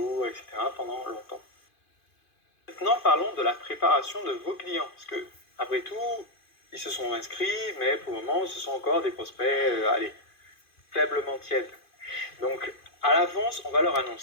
etc. pendant longtemps. Maintenant, parlons de la préparation de vos clients, parce que, après tout, ils se sont inscrits, mais pour le moment, ce sont encore des prospects, faiblement tièdes. Donc, à l'avance, on va leur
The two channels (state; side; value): late; right; 2.5 ms